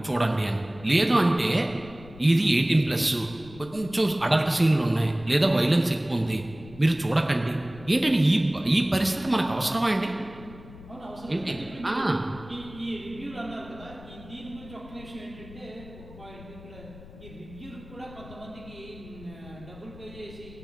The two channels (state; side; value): noise; left; rumble, 18 dB below the sound